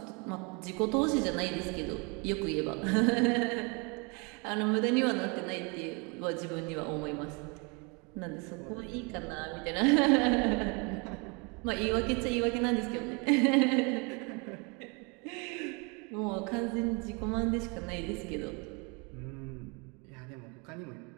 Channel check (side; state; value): left; quieter; 31.5 dB